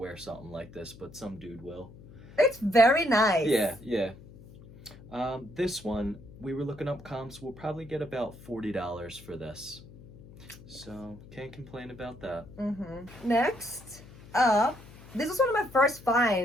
something like this, but some dude will. It's very nice. Yeah. This one, we were looking up comps. We'll probably get about $40 for this. So, can't complain about that. Next up, this was one of my first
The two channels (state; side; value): noise; left; hum, 19 dB below the sound